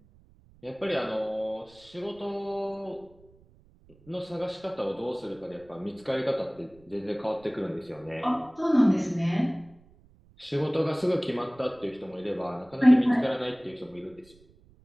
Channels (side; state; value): right; noise; rumble, 28 dB below the sound